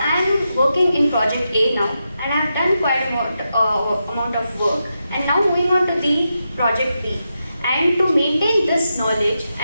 am working in project A now, and I have done quite a amount of work, and now moving on to the project B. And to maintain this knowledge,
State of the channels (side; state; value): both; inverted; correlation -0.87